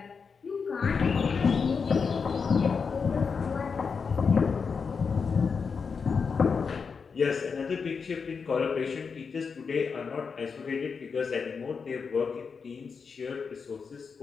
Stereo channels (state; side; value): quieter; right; 5.5 dB